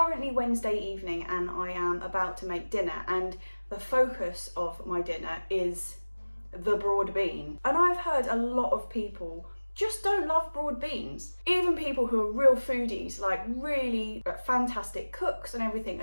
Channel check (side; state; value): both; inverted; correlation -1.00